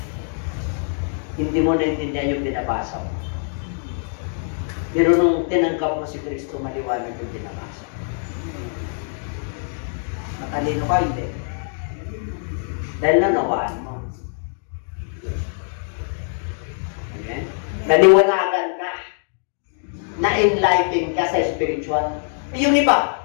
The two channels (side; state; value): right; silent; 57 dB below the other